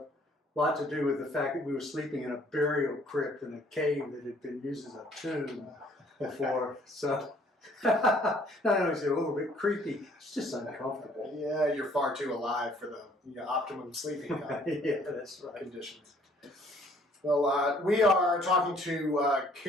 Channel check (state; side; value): normal; both; correlation 0.60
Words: lot to do with the fact that we were sleeping in a burial crypt in a cave that had been used as a tomb before. So not only is it a little bit creepy, it's just uncomfortable. Yeah, you're far too alive for the optimum sleeping Yeah, that's right. conditions. Well, we are talking to